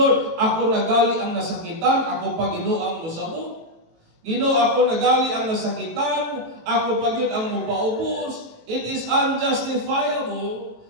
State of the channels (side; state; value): left; late; 18 ms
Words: Ako nagali ang nasakitan, ako pa Ginoo ang musabot. Ginoo, ako nagali ang nasakitan, ako pa yun ang mupaubos. It is unjustifiable